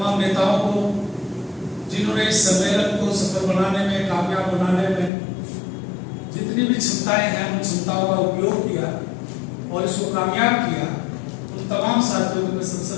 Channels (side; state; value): right; drops out; at 5.1 s